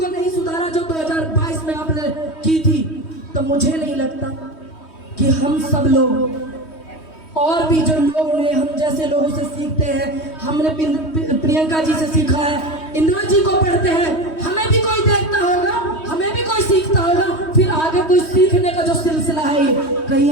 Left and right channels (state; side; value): late; right; 3.2 ms